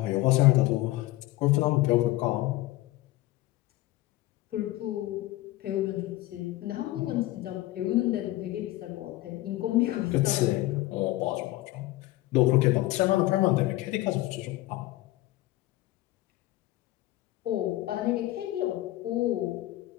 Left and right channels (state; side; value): quieter; right; 17.5 dB